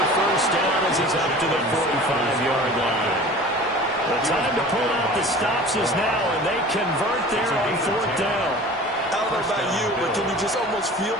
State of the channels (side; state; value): both; normal; correlation 0.41